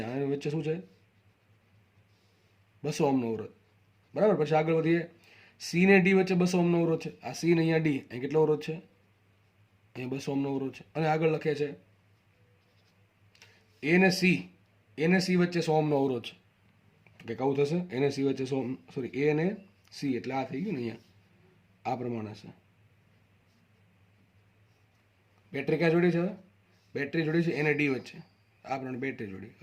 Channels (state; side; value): identical; both; correlation 1.00